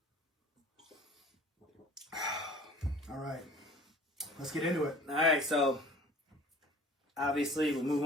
All right, let's get into it. All right, so obviously we'll move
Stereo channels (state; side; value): normal; both; correlation 0.47